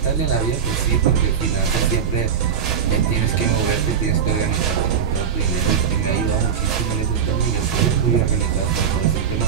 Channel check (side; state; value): left; quieter; 7.5 dB